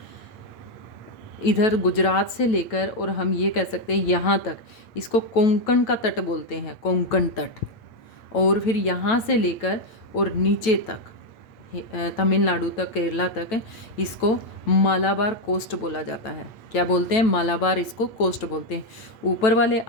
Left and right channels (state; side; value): late; right; 8.6 ms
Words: इधर गुजरात से लेकर, और हम ये कह सकते हैं यहाँ तक, इसको कोंकण का तट बोलते हैं, कोंकण तट। और फिर यहाँ से लेकर और नीचे तक, तमिलनाडु तक, केरला तक, इसको मालाबार कोस्ट बोला जाता है। क्या बोलते हैं? मालाबार इसको कोस्ट बोलते हैं। ऊपर वाले